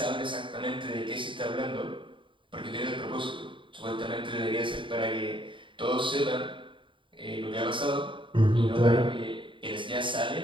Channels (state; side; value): late; left; 0.24 ms